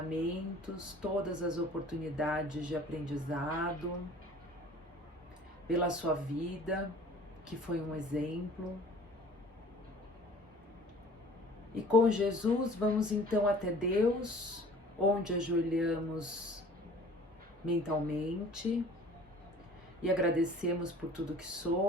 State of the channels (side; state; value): both; normal; correlation 0.48